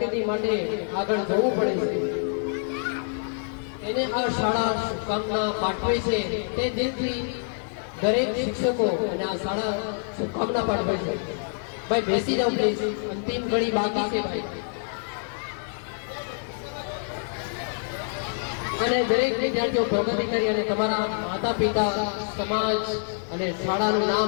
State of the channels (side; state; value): right; silent; 61 dB below the other